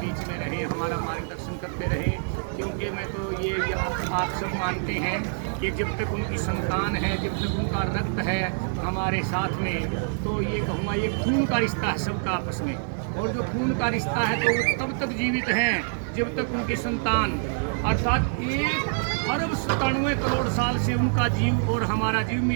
में रहे, हमारा मार्गदर्शन करते रहे। क्योंकि मैं तो ये आप सब मानते हैं कि जब तक उनकी संतान है, जब तक उनका रक्त है हमारे साथ में, तो ये कहूँगा ये खून का रिश्ता है सबका आपस में। और जो खून का रिश्ता है तो वो तब तक जीवित हैं जब तक उनकी संतान, अर्थात 1 अरब 97 करोड़ साल से उनका जीव और हमारा जीव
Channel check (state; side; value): silent; left; 61 dB below the other